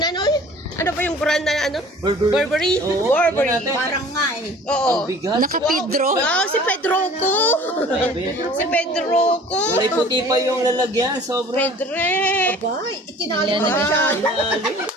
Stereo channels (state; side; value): normal; both; correlation 0.47